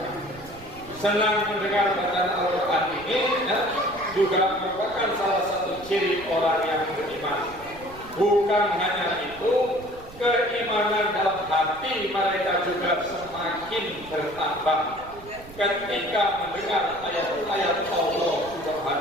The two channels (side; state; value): right; noise; rumble, 19 dB below the sound